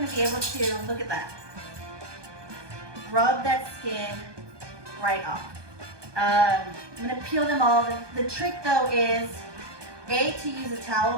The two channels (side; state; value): left; late; 1.2 ms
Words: be able to, look at that. Rub that skin right off. I'm gonna peel them all. The trick though is, A, to use a towel